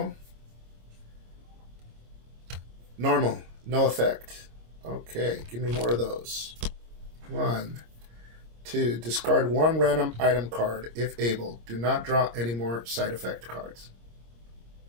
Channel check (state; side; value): late; left; 26 ms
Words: normal, no effect. Okay, give me more of those. 1, 2. Discard one random item card if able. Do not draw any more side effect cards.